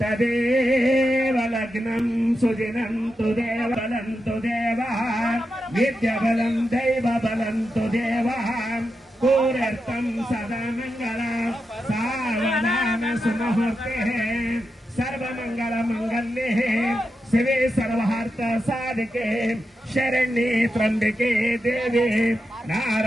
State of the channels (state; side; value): normal; both; correlation 0.88